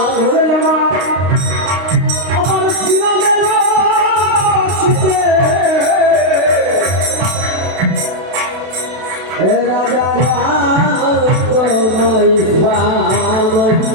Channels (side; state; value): left; late; 32 ms